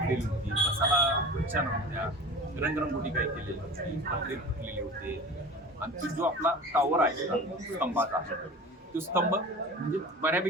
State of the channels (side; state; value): both; normal; correlation 0.37